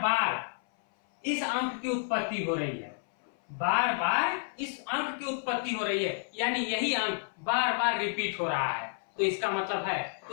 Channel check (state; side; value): silent; right; 58 dB below the other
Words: बार इस अंक की उत्पत्ति हो रही है, बार बार इस अंक की उत्पत्ति हो रही है, यानी यही अंक बार बार रिपीट हो रहा है। तो इसका मतलब है,